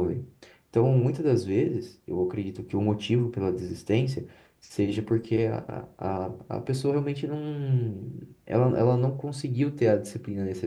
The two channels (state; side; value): identical; both; correlation 1.00